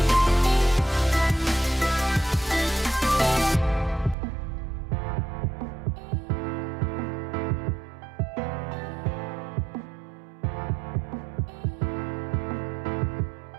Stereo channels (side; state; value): left; drops out; at 4.2 s